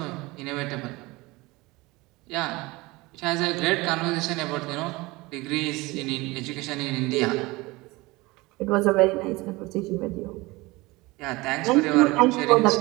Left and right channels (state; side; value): quieter; left; 22.3 dB